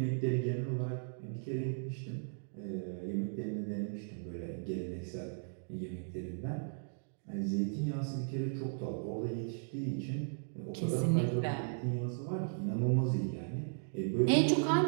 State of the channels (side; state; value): left; silent; digital silence